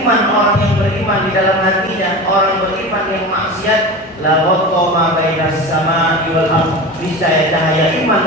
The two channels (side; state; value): both; normal; correlation 0.30